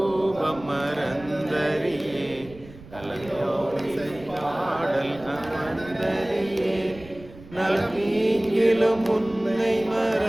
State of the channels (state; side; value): noise; right; rumble, 19 dB below the sound